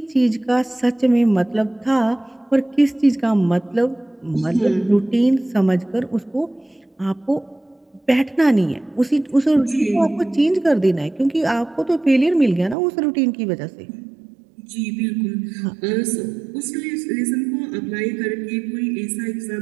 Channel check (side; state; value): left; drops out; at 12.8 s